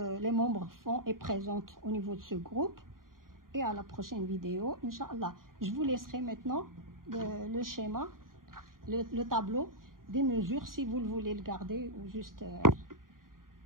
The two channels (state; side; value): late; left; 0.91 ms